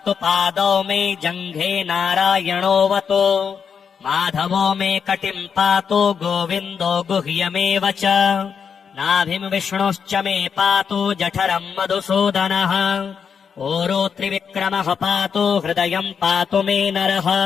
पादौ मे जङ्घे नारायणोऽवतु। माधवो मे कटिम् पातु गोविन्दो गुह्यमेव च। नाभिम् विष्णुश्च मे पातु जठरम् मधुसूदनः। ऊरू त्रिविक्रमः पातु हृदयम् पातु मे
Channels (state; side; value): quieter; right; 6.7 dB